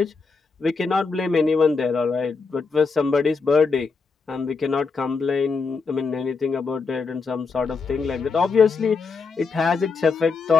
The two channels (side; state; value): right; quieter; 4.7 dB